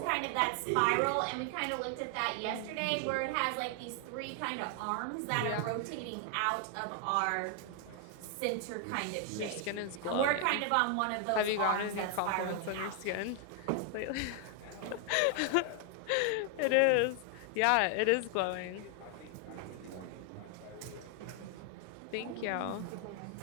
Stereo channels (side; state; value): both; different; correlation 0.00